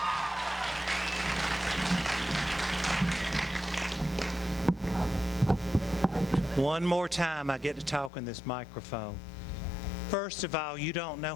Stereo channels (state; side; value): drops out; right; at 8.1 s